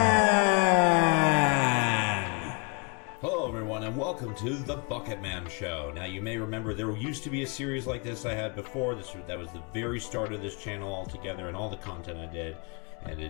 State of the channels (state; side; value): quieter; right; 36.6 dB